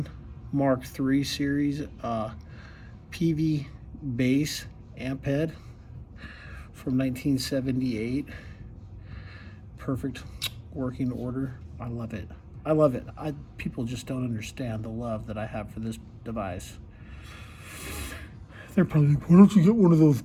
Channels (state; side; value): identical; both; correlation 1.00